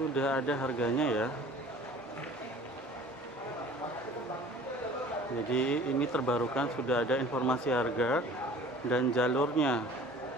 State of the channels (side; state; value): both; normal; correlation 0.47